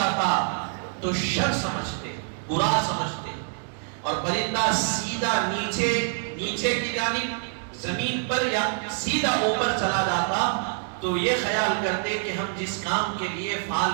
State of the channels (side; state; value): left; silent; 61 dB below the other